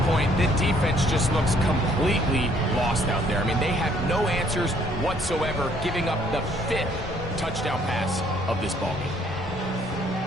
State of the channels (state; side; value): normal; both; correlation 0.63